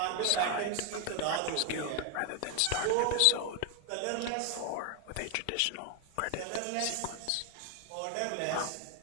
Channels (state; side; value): different; both; correlation 0.01